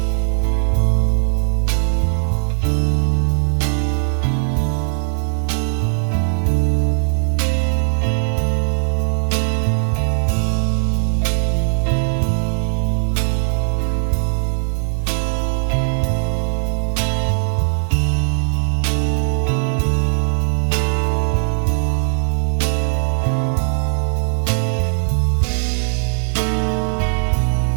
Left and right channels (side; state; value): left; silent; 56 dB below the other